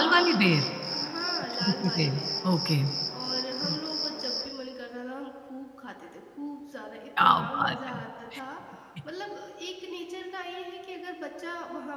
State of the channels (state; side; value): identical; both; correlation 1.00